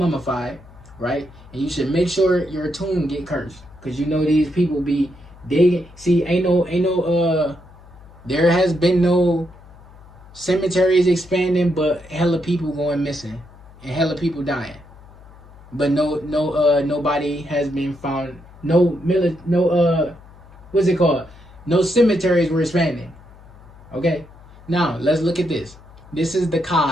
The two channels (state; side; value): noise; left; hum, 22 dB below the sound